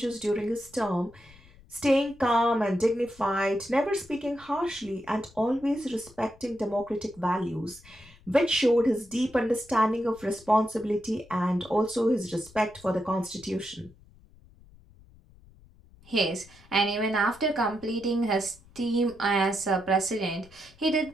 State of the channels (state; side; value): noise; left; rumble, 25 dB below the sound